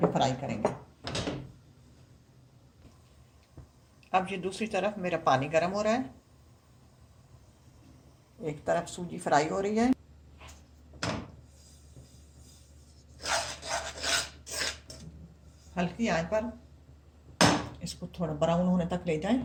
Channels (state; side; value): identical; both; correlation 1.00